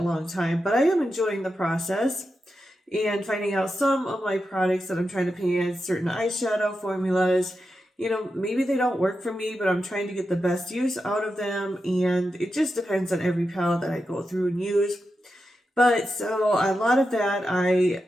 time, but I am enjoying the process and finding out some of my products that I'm trying to pan, certain eyeshadow formulas, maybe they don't work for me, but I'm trying to get the best use out of them, and it just depends on every palette that I go through and use. But so a lot of that I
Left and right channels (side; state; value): both; normal; correlation 0.89